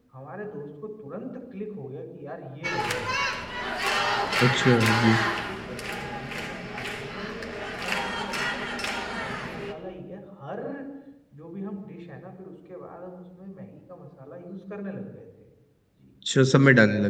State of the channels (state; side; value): identical; both; correlation 1.00